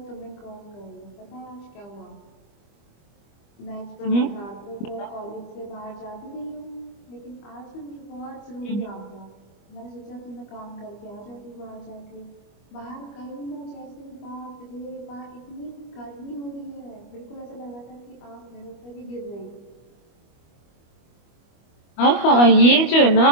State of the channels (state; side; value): late; right; 25 ms